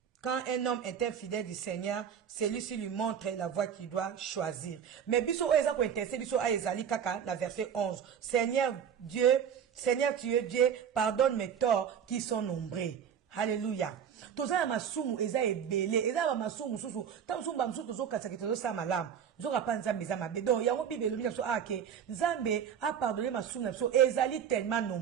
Quand un homme est infidèle du Seigneur, celui-ci lui montre la voie qu'il doit choisir. Mais biso oeza ko intéressé biso a ezali kaka na verset 11. Seigneur tu es Dieu, pardonne mes torts qui sont nombreux. Alléluia. Toza ya masumu eza ebele, eza ba masumu susu. Ta masumu ba msusu tozo katsa ke tozo sa malamu. Zoka pa nzambe za mabe. Donc yango Bible lobi na so ake, nzambe a pardonné masumu na so ezali tellement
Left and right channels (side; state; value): left; quieter; 8.1 dB